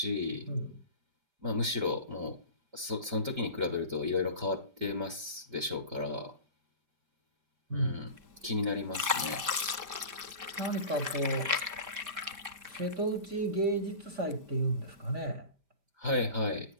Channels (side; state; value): left; late; 5.0 ms